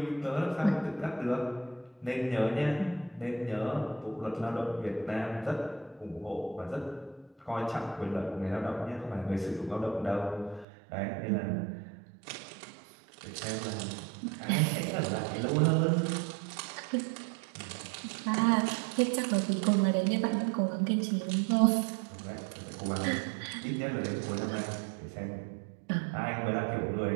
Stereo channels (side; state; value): left; drops out; at 10.7 s